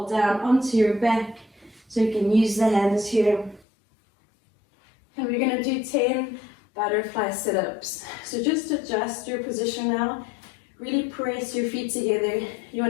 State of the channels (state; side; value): drops out; right; at 3.6 s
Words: down onto your back so you can use the hands here. And we're going to do 10 butterfly sit-ups. So just adjust your position now. Really press your feet together. You